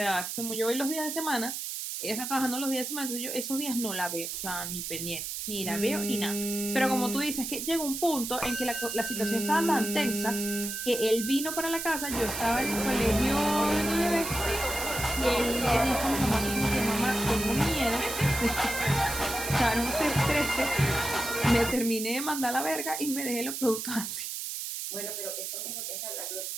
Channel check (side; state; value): right; noise; hiss, 5 dB below the sound